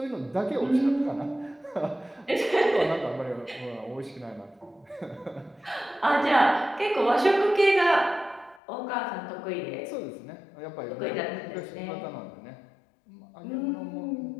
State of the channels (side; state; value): right; drops out; at 8.6 s